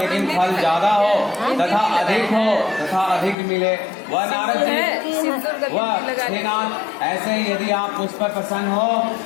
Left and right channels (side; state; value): right; drops out; at 3.4 s